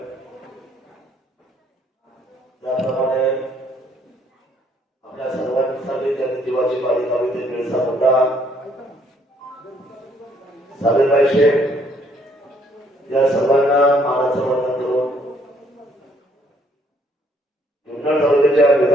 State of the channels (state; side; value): normal; both; correlation 0.66